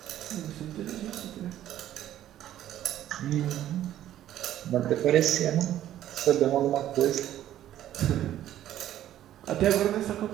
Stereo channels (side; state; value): left; quieter; 12.3 dB